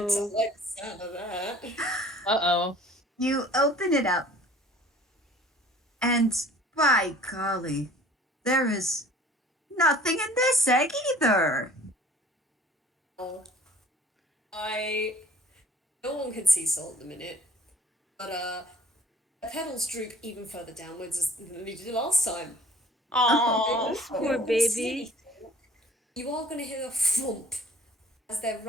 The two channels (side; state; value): both; normal; correlation 0.51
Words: Good. I like the sound of that. Uh-oh. You open it up, and by golly, there is nothing in this egg either. No one can see Sol at the minute, but the petals droop even further downwards than they did last time. Oh, Poor baby. You are going to hear a thump as their